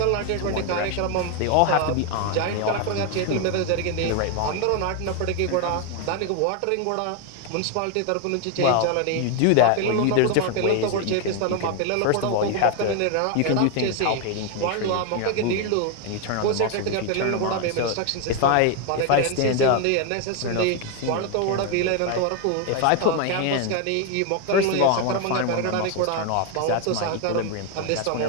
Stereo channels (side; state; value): both; different; correlation 0.01